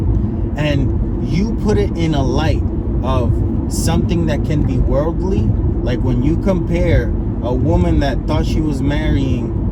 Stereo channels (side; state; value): both; identical; correlation 1.00